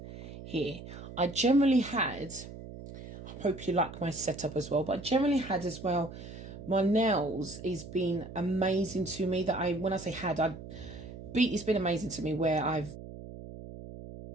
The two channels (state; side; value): noise; right; hum, 13 dB below the sound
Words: here, I generally had, I hope you like my setup as well, but I generally had as well, my nails has been amazing to me. That when I say had, it's been amazing to me where I've